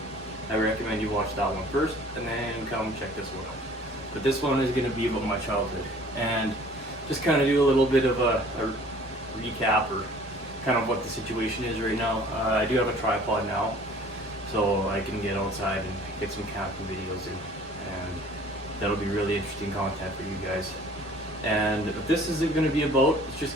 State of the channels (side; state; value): both; normal; correlation 0.51